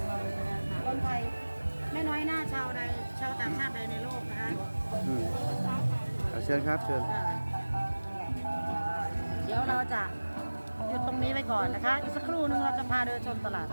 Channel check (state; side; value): inverted; both; correlation -1.00